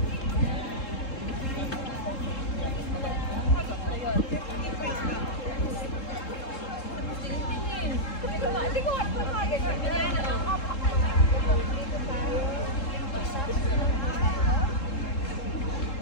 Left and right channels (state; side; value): late; right; 3.7 ms